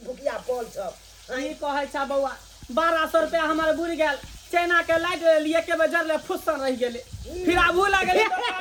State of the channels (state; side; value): identical; both; correlation 1.00